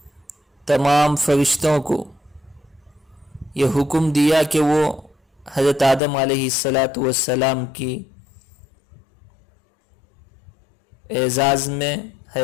تمام فرشتوں کو یہ حکم دیا کہ وہ حضرت آدم علیہ السلام کی اعزاز میں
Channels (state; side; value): drops out; right; at 6.0 s